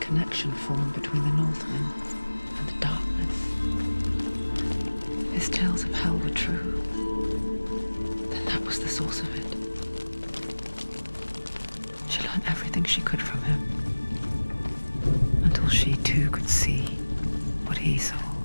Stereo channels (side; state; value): both; inverted; correlation -1.00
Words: form between the Northmen and the darkness. His tales of hell were true. Then that was the source of it. She learned everything she could from him. Until she too could see what he saw.